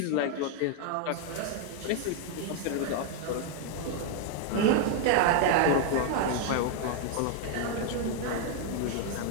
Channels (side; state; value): both; different; correlation 0.00